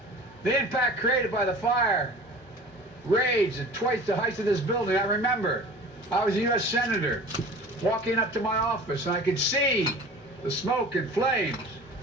The impact created by the fire raged at twice the height of this building. I remember I was a U.S. Senator walking up to my office, and I could see the smoke and flames.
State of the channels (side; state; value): both; normal; correlation 0.41